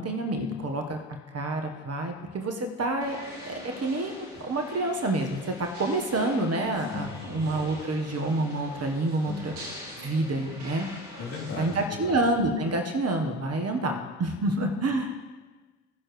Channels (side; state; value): both; normal; correlation 0.30